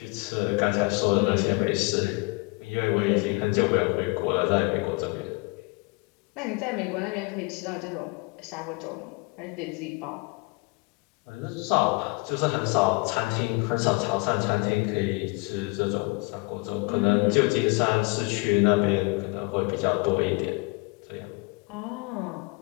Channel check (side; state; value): right; quieter; 28.8 dB